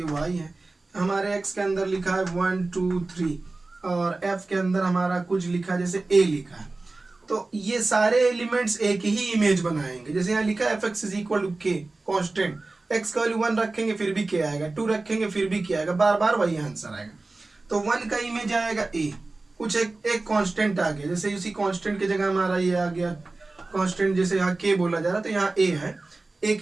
y है, हमारे x के अंदर लिखा है 1 2 3 और f के अंदर हमारा कुछ लिखा है जैसे a लिखा है, तो ये सारे एलिमेंट्स एक ही इमेज बनाएंगे। जैसे यहाँ लिखा है fx = k कांस्टेंट, x का वैल्यू 1 रखेंगे फिर भी k आएगा, 2 रखेंगे फिर भी k आएगा, बार बार वही आंसर आएगा। तो 1 का इमेज आएगा a, कुछ एक कांस्टेंट आ गया, जैसे उसी कांस्टेंट की जगह हमारा ये आ गया कांस्टेंट, जैसे यहाँ k बोला जा रहा तो यहाँ a है, एक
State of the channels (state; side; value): quieter; left; 3.3 dB